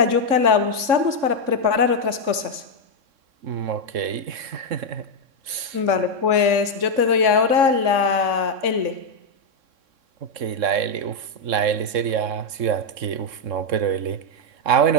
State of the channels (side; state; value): left; late; 3.6 ms